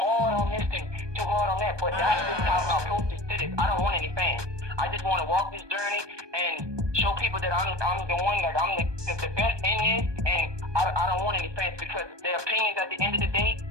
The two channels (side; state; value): left; late; 1.2 ms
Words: on this and too hard on that. But that's just how my approach is to this. I don't want any fans. I just want to walk this journey and show people that I'm the one, like I'm the best in this, and I don't want any fans because their opinions at the end of the day,